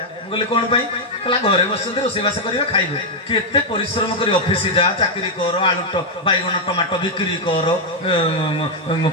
बोले कोन पई कहला घरे बसते रोसेबास करियो खाइबे केते परिश्रम करी ऑफिस जा चाकरी कर आलू बैगन टमाटो बिक्री कर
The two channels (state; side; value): normal; both; correlation -0.01